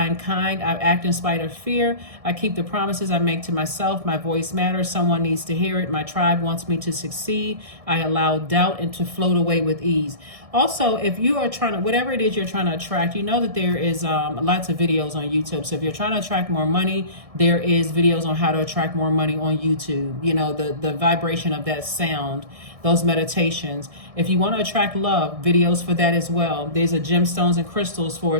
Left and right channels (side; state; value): left; late; 1.6 ms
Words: am kind, I act in spite of fear. I keep the promises I make to myself. My voice matters, someone needs to hear it. My tribe wants me to succeed. I allow doubt and to float away with ease. Also, if you are trying to, whatever it is you're trying to attract, you know that there is lots of videos on YouTube. So if you're trying to attract more money, there is videos on how to attract more money on YouTube. The vibration of that sound, those meditations. If you want to attract love, videos for that as well. There's a gemstones and crystals for